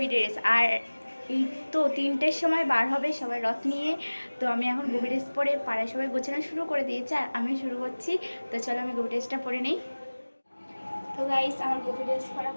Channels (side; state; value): both; inverted; correlation -1.00